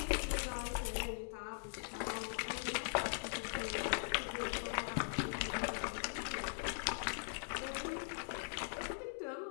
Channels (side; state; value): right; silent; digital silence